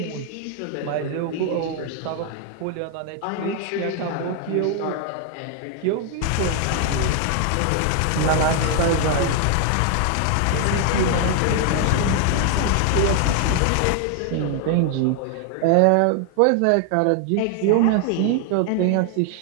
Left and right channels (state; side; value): different; both; correlation 0.00